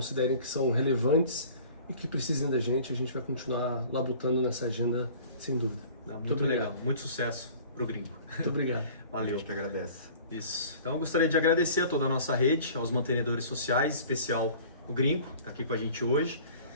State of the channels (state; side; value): inverted; both; correlation -0.47